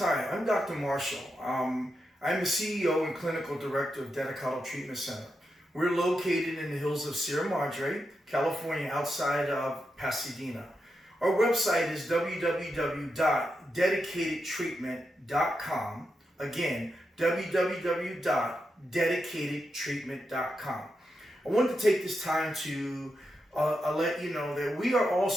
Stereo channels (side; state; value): both; normal; correlation 0.86